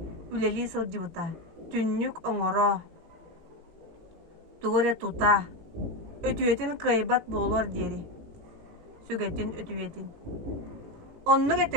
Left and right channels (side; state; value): left; late; 18 ms